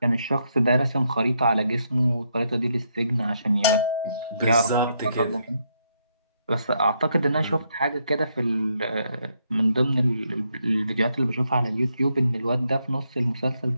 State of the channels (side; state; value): both; inverted; correlation -0.77